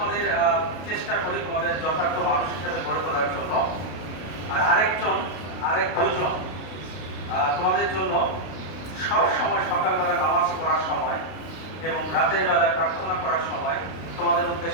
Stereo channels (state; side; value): late; right; 32 ms